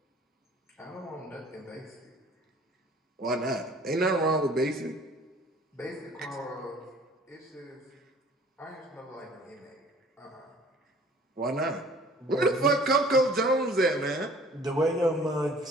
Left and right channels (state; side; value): normal; both; correlation 0.51